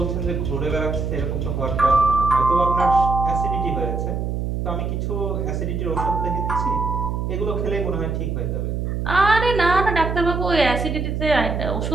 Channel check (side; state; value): right; noise; hum, 2 dB below the sound